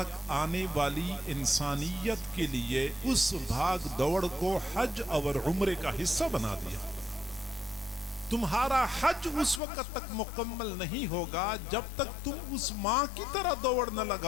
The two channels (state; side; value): drops out; right; at 9.6 s